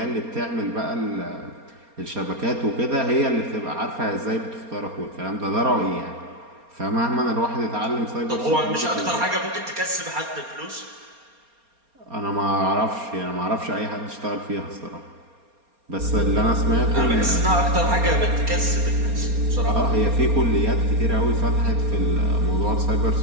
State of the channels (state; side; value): late; left; 4.3 ms